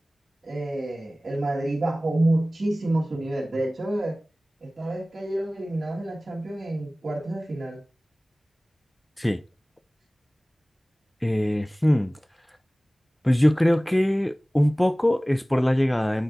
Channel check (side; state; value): both; normal; correlation 0.98